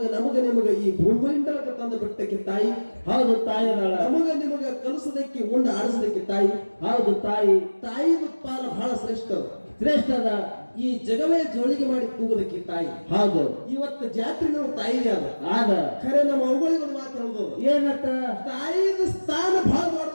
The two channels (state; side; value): inverted; both; correlation -1.00